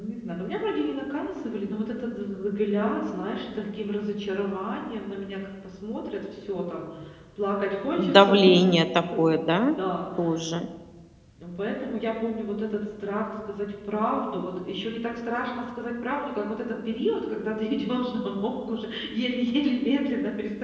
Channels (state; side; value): identical; both; correlation 1.00